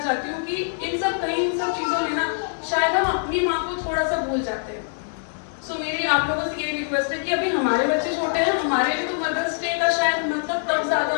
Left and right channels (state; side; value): silent; right; digital silence